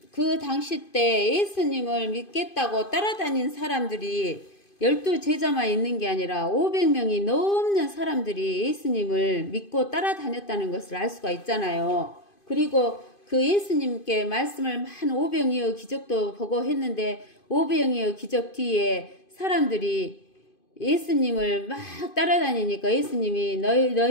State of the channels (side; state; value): right; late; 2.5 ms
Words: 그 당시 때 예수님을 믿겠다고 따라다닌 사람들이 12제자만 있는 게 아니라 500명이 넘는 사람들이 예수님을 믿고 따라다녔다는 것을 알 수가 있잖아요. 그리고 그 예수님께 말씀을 한 500여의 기적도 보고 했는데 500여의 기적 뒤에 사람들이 예수님을 막 따라다니니까 예수님이